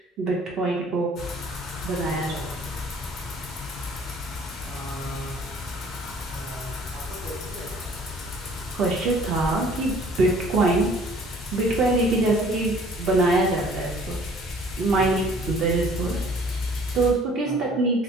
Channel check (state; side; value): normal; both; correlation 0.54